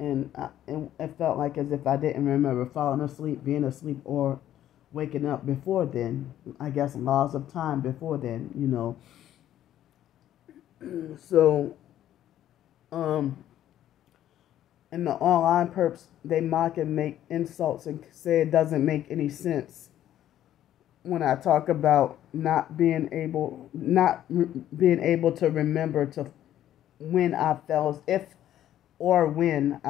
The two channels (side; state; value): right; quieter; 11.9 dB